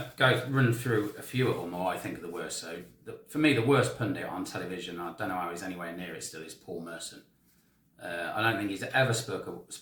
run through a few of them, or I think are the worst. So, for me, the worst pundit on television, I don't know how he's anywhere near it still, is Paul Merson. I don't think he's ever spoke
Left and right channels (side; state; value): both; identical; correlation 1.00